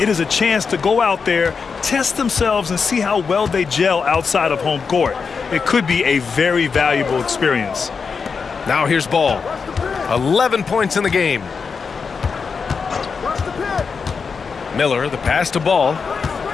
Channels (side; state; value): right; quieter; 5.5 dB